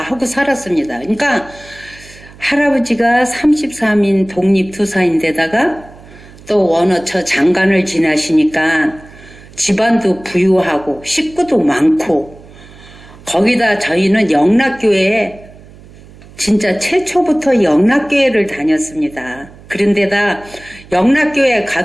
하고 살았습니다. 그러니까 할아버지가 33인 독립투사인데다가 또 원어처 장관을 지나시니까 집안도 부유하고 식구도 많고 거기다 저희는 영락교회에 진짜 최초부터 영락교회를 다녔습니다. 그런데다 영락교회에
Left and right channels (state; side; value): noise; right; hum, 22 dB below the sound